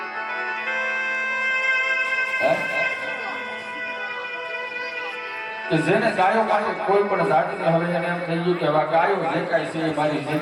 કે જેને ગાયો માટે કોઈ પણ જાતિને હવે એને એમ થઈ ગયું કે હવે ગાયો જે કાંઈ છે મારી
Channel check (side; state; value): both; identical; correlation 1.00